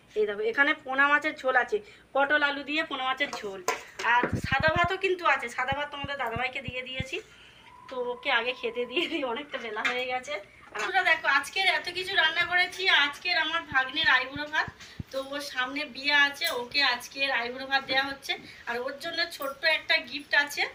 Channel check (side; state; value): both; identical; correlation 1.00